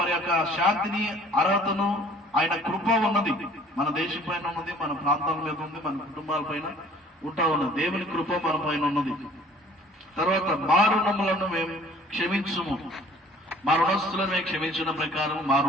యొక్క శాంతిని, అర్హతను, ఆయన కృప ఉన్నది మన దేశం పైన ఉన్నది, మన ప్రాంతాల మీద ఉంది, మన కుటుంబాల పైన ఉంటా ఉన్నది. దేవుని కృప మన పైన ఉన్నది. తర్వాత మా రుణములను మేము క్షమించుము. మా రుణస్తులను మేము క్షమించిన ప్రకారం మా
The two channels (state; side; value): normal; both; correlation 0.53